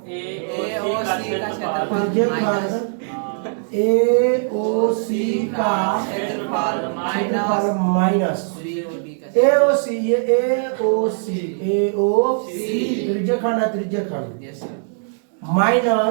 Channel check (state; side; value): silent; left; digital silence